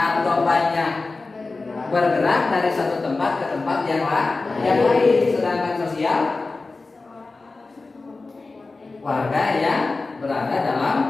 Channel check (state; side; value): quieter; right; 3.6 dB